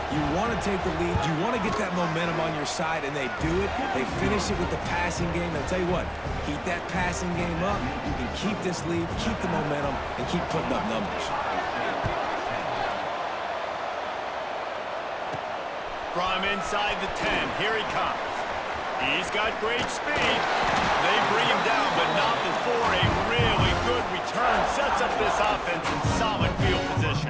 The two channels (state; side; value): identical; both; correlation 1.00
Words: you want to take the lead. You want to get that momentum on your side, and they do it. They finish it with the passing game. And I'll tell you what, keep that passing game up. You can keep this lead, keep the momentum, and keep putting up numbers. From inside the 10, here he comes. He's got great speed. They bring him down, but not before a really good return sets up this offense in solid field position.